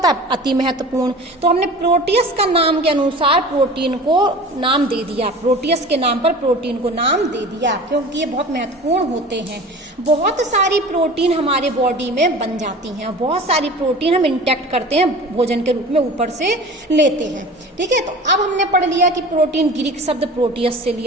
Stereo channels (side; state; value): both; normal; correlation 0.38